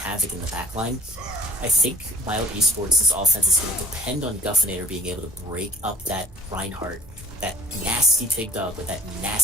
in the backline. I think Mild Esports' offense is going to depend on Guffinator being able to break up that Reinhardt, that nasty pig dog with that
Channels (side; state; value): both; normal; correlation 0.51